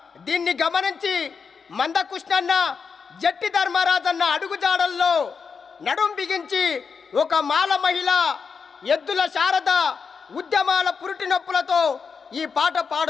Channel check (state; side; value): quieter; right; 5.7 dB